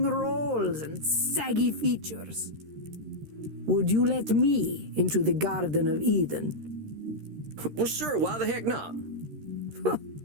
rolls and saggy features. Would you let me into the Garden of Eden? Well, sure, why the heck not?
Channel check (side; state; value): left; late; 13 ms